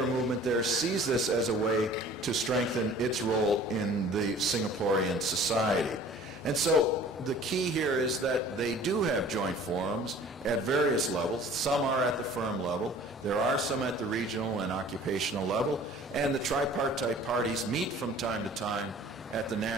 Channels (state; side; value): normal; both; correlation 0.48